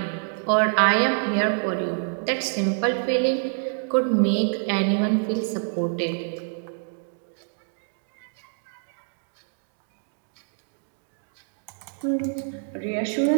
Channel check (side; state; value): left; silent; digital silence